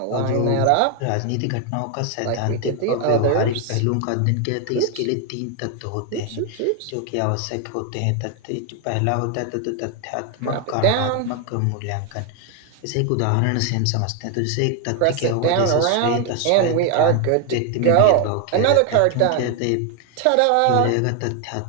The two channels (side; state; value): both; different; correlation 0.01